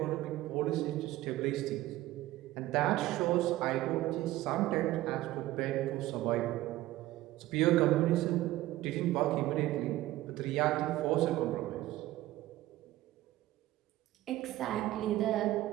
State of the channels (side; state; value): left; quieter; 16.2 dB